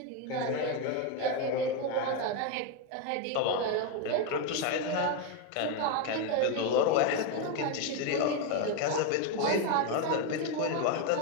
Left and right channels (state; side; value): different; both; correlation 0.02